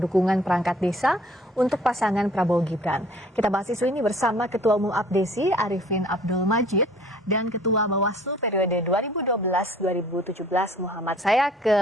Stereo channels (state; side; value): normal; both; correlation 0.53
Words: perangkat desa untuk pasangan Prabowo Gibran. Kita bahas isu ini bersama Ketua Umum Abdesi Arifin Abdul Majid dan Ketua Bawaslu periode 2012-2017 Muhammad. Saya